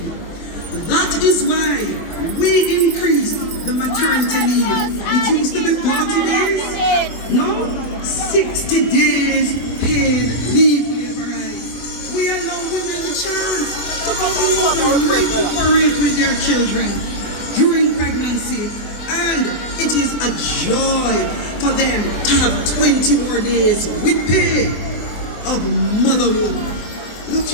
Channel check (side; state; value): right; late; 24 ms